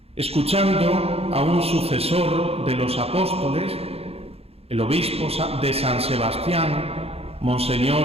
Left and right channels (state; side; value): late; left; 0.29 ms